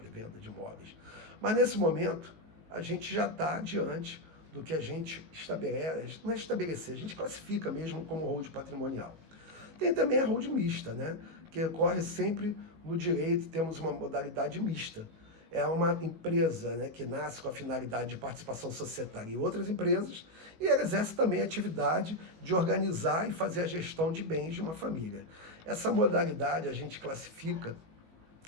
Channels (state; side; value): late; left; 19 ms